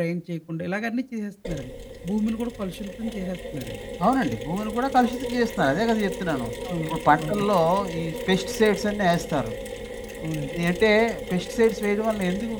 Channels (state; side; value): identical; both; correlation 1.00